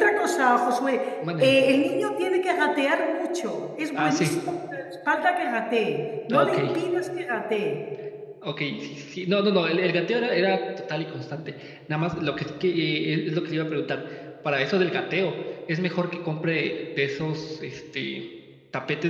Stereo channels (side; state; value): both; identical; correlation 1.00